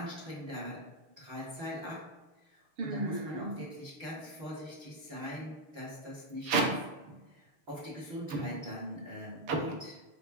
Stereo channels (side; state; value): left; late; 6.6 ms